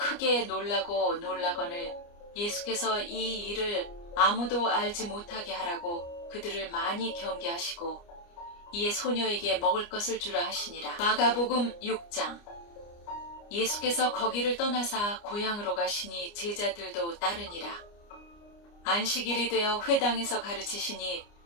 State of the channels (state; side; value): late; right; 29 ms